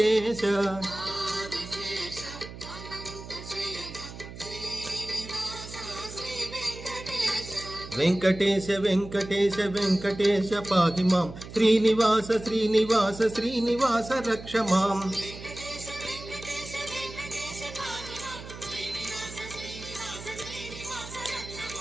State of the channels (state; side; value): noise; right; hum, 13 dB below the sound